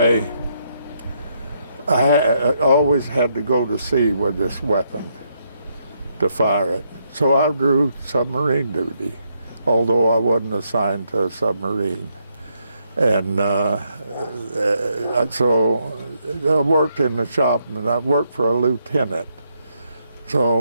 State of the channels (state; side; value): inverted; both; correlation -0.77